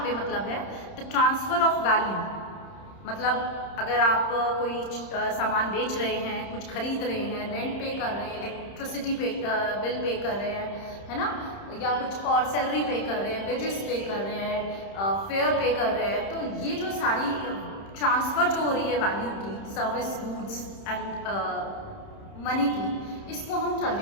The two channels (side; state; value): right; late; 30 ms